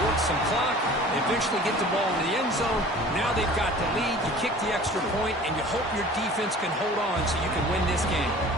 work some clock. They eventually get the ball in the end zone. Now they've got the lead. You kick the extra point, and you hope your defense can hold on so you can win this game.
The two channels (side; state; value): both; normal; correlation 0.45